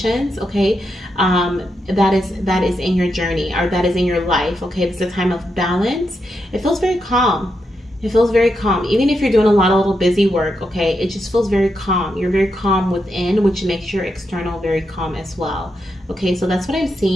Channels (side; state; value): both; normal; correlation 0.84